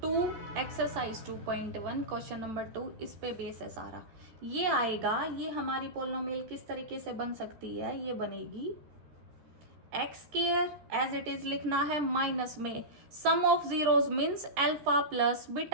exercise 2.1 question number 2, इस पे बेस है सारा। ये आएगा, ये हमारी पॉलिनोमियल किस तरीके से बन सकती है, ये बनेगी x² एज इट इज लिखना है, माइनस में sum of zeros means alpha plus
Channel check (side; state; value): left; late; 13 ms